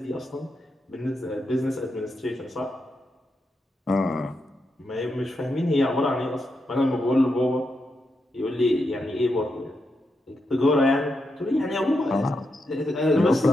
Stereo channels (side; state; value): both; normal; correlation 0.85